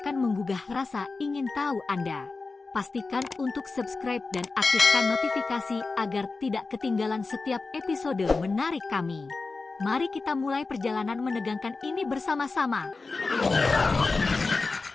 menggugah rasa ingin tahu Anda. Pastikan untuk subscribe dan aktifkan notifikasi agar tidak ketinggalan setiap episode menarik kami. Mari kita mulai perjalanan menegangkan ini bersama-sama.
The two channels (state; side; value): quieter; right; 3.9 dB